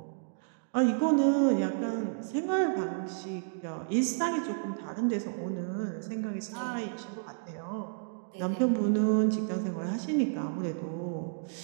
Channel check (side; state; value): left; silent; digital silence